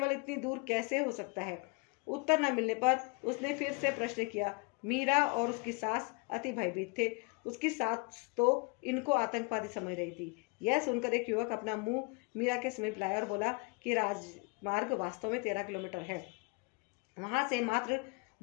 इतनी दूर कैसे हो सकता है? उत्तर न मिलने पर उसने फिर से प्रश्न किया। मीरा और उसकी सास अति भयभीत थे। उसकी सास तो इनको आतंकवादी समझ रही थी। यह सुनकर एक युवक अपना मुंह मीरा के समीप लाया और बोला कि राजमार्ग वास्तव में 13 किलोमीटर है। वहां से मात्र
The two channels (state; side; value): quieter; right; 29.6 dB